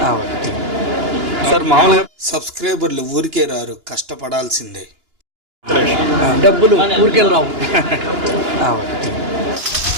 సార్ మామూలుగా సబ్స్క్రైబర్లు ఊరికే రారు, కష్టపడాల్సిందే. డబ్బులు ఊరికే రావు.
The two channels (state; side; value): late; left; 2.9 ms